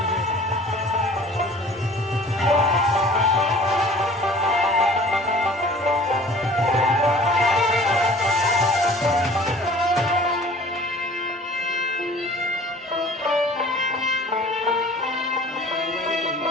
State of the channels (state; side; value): normal; both; correlation 0.47